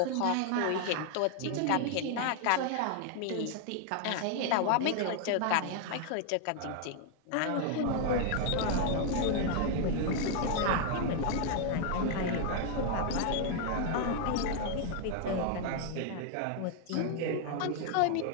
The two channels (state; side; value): different; both; correlation 0.00